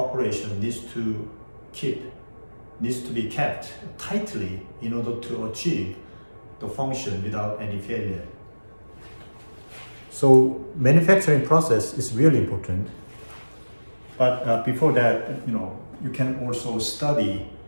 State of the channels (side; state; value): both; inverted; correlation -1.00